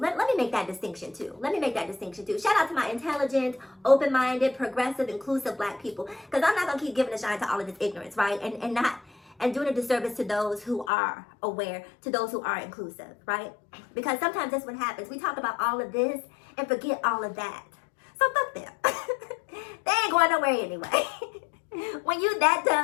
me make that distinction too. Shout out to my intelligent, open-minded, progressive, inclusive black people. Because I'm not going to keep giving a shine to all of this ignorance, right? And doing a disservice to those who are aware, to those who are inclusive, right? Because sometimes that's what happens. We talk about all of this and forget all of that. So fuck them. They ain't going nowhere anyway. When you that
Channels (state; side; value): drops out; right; at 10.9 s